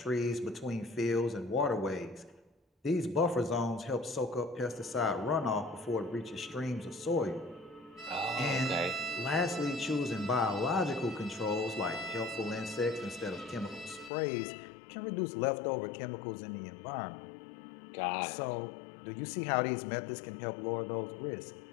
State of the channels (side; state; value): right; drops out; at 14.1 s